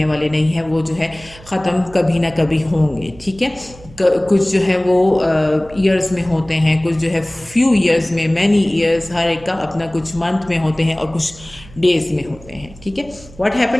वाले नहीं हैं, वो जो है ख़त्म कभी ना कभी होंगे, ठीक है. कुछ जो है वो ईयर्स में होते हैं, कुछ जो है फ्यू ईयर्स में, मैनी ईयर्स, हर एक का अपना कुछ मंथ में होते हैं और कुछ डेज में होते हैं, ठीक है. What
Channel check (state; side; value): noise; right; hum, 21 dB below the sound